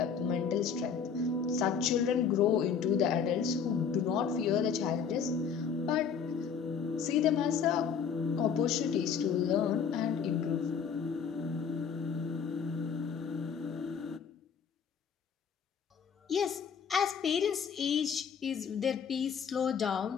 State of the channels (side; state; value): right; quieter; 6.7 dB